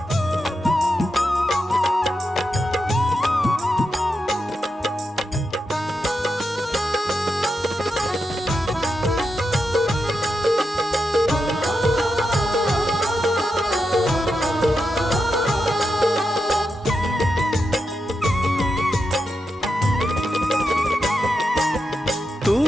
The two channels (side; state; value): both; normal; correlation 0.86